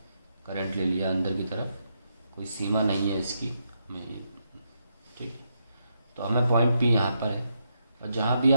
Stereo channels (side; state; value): both; inverted; correlation -0.81